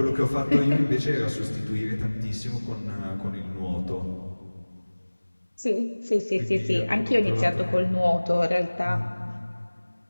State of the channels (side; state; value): both; inverted; correlation -1.00